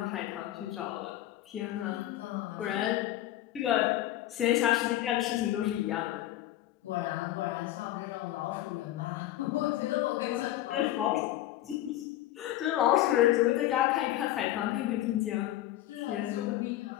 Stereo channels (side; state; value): right; quieter; 14.3 dB